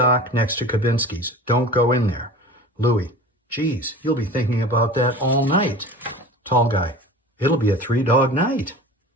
next to Kabinski's. Don't go in there. Louis. Geez, you'll be thinking about that all night. Tall guy. It'll be a 3-dog night.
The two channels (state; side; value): normal; both; correlation 0.37